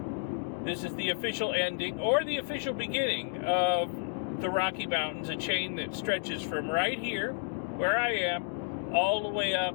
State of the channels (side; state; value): right; silent; digital silence